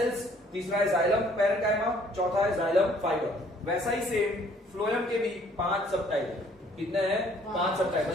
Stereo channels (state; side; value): normal; both; correlation 0.60